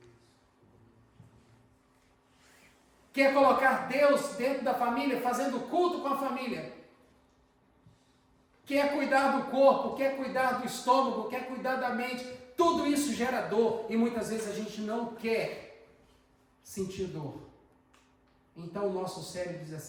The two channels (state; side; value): identical; both; correlation 1.00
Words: Quer colocar Deus dentro da família, fazendo culto com a família. Quer cuidar do corpo, quer cuidar do estômago, quer cuidar da mente. Tudo isso gera dor e muitas vezes a gente não quer sentir dor. Então o nosso cérebro diz